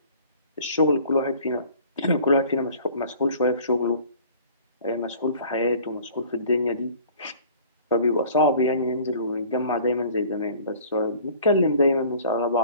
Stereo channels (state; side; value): inverted; both; correlation -0.49